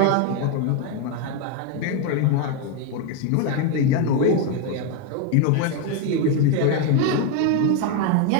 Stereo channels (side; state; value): both; different; correlation 0.01